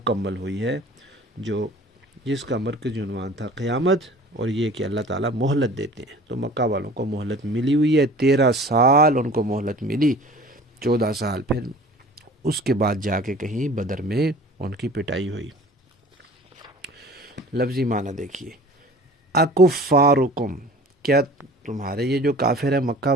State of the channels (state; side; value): normal; both; correlation 0.45